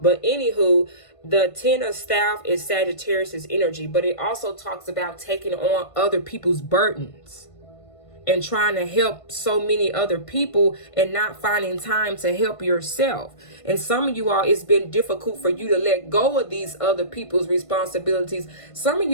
anywho, the Ten of Staff is Sagittarius's energy, but it also talks about taking on other people's burdens and trying to help so many other people and not finding time to help yourself. And some of you all, it's been difficult for you to let go of these other people's responsibilities. Some of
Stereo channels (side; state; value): right; late; 1.5 ms